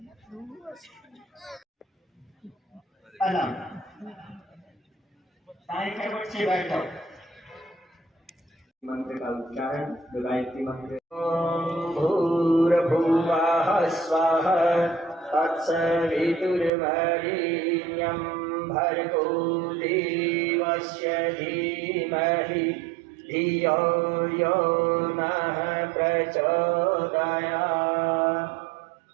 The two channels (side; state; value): left; drops out; at 16.7 s